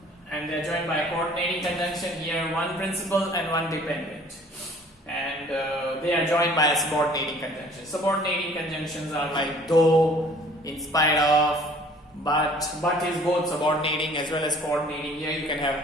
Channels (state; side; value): normal; both; correlation 0.53